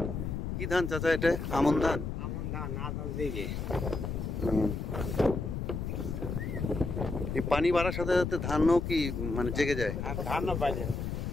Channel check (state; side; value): noise; left; rumble, 3 dB below the sound